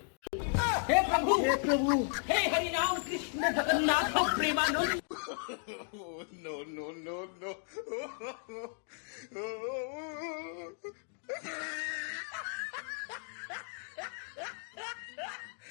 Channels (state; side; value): silent; right; 55 dB below the other